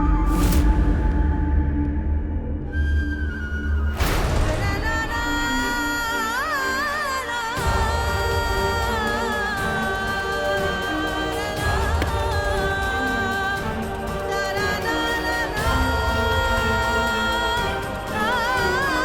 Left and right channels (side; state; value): both; identical; correlation 1.00